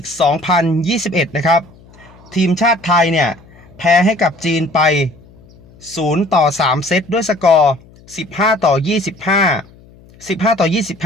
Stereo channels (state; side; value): noise; left; hum, 25 dB below the sound